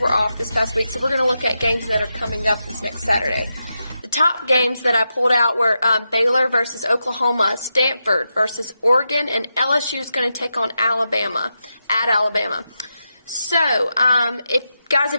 off this past week, so we're going to look at games that are coming up this next Saturday. The top games that I pulled out were Baylor versus Oklahoma, Stanford versus Oregon, and LSU is going to take on Alabama, at Alabama. So,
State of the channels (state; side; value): inverted; both; correlation -0.87